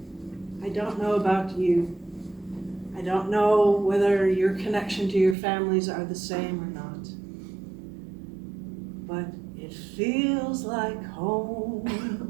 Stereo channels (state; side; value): drops out; left; at 5.4 s